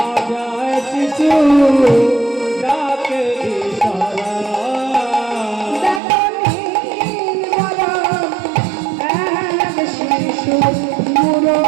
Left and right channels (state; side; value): drops out; left; at 6.0 s